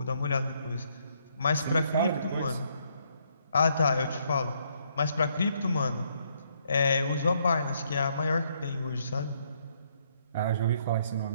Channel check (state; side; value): inverted; both; correlation -0.71